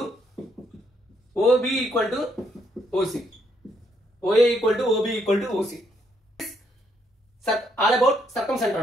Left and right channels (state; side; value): normal; both; correlation 0.73